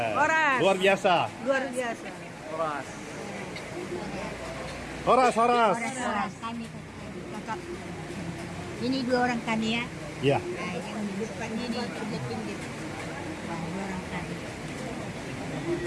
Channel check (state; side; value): identical; both; correlation 1.00